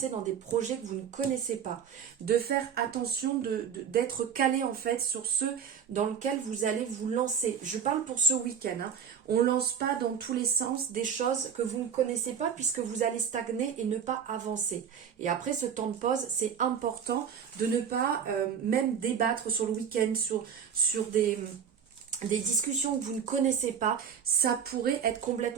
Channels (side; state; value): left; quieter; 7.5 dB